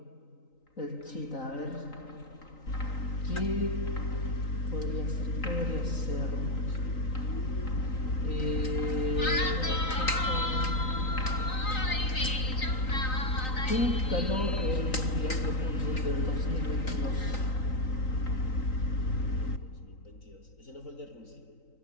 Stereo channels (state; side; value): late; right; 3.9 ms